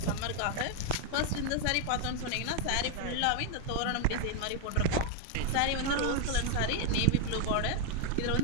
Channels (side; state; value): both; different; correlation 0.01